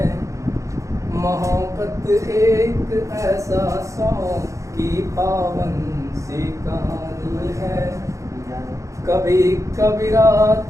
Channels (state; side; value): late; left; 0.15 ms